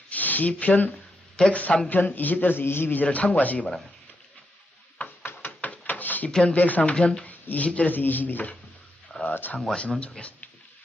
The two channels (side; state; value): both; normal; correlation 0.83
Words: 시편 103편 20절에서 22절을 참고하시기 바랍니다. 시편 103편 20절에서 22절 참고하시면 좋겠습니다.